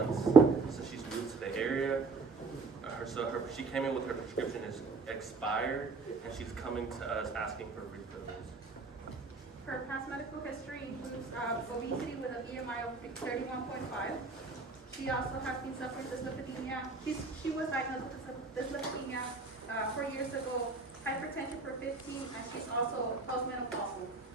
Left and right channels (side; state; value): left; quieter; 4.0 dB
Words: since she's moved to the area. She came in with her prescription is expired, and she's coming to us asking for refills. Her past medical history includes obesity with an BMI of 31.5. She also has been suffering dyslipidemia. She was diagnosed with dyslipidemia 4 years ago, hypertension for 15, and she's also postmenopausal.